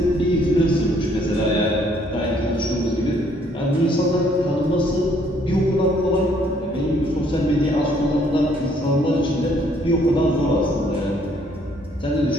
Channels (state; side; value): normal; both; correlation 0.65